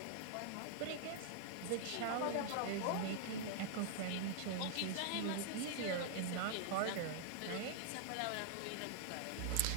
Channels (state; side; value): different; both; correlation -0.01